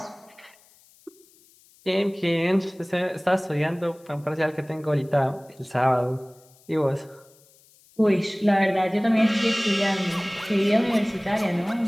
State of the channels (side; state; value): left; noise; hiss, 29 dB below the sound